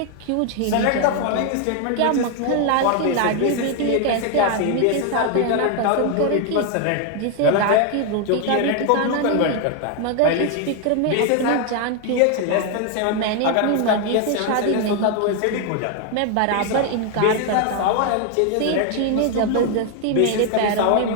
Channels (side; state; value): both; different; correlation 0.01